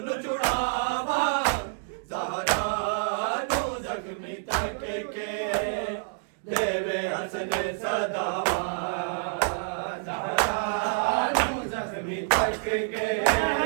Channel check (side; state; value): left; silent; digital silence